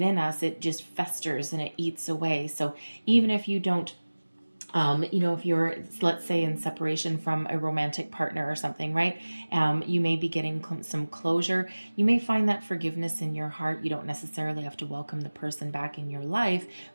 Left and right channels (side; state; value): both; inverted; correlation -1.00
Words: us. It just festers and it eats away. So even if you don't if you're, let's say, in separation from a romantic partner or something, right? You may be getting some closure. You may find that forgiveness in your heart. You don't necessarily have to welcome the person back in your life,